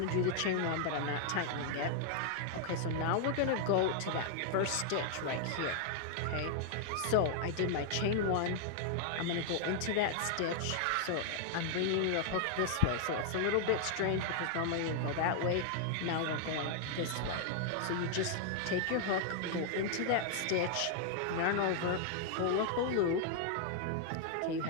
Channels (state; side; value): different; both; correlation 0.00